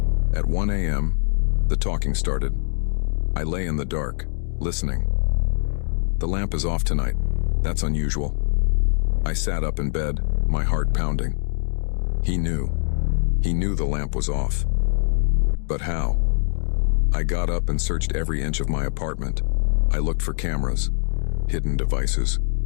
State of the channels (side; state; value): right; silent; digital silence